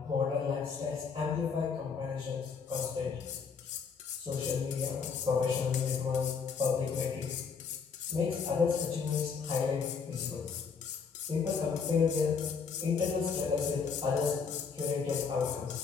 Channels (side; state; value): right; quieter; 5.7 dB